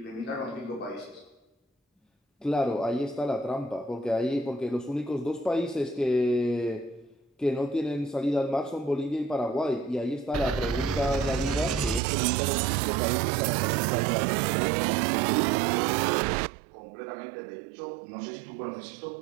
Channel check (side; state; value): left; drops out; at 12.0 s